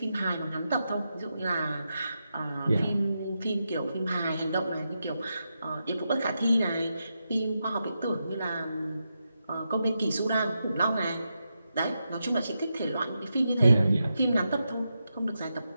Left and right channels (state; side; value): inverted; both; correlation -0.87